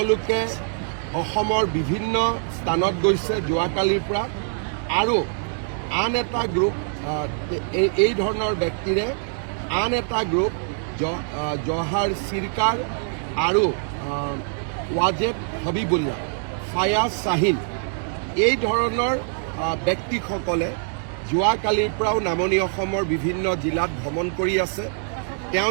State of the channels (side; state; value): left; silent; 63 dB below the other